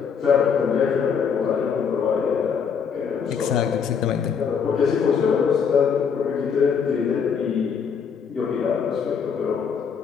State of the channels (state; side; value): quieter; right; 6.6 dB